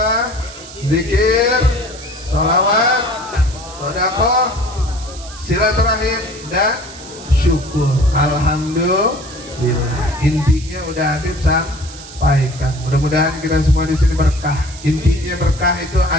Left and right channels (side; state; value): right; noise; hiss, 16 dB below the sound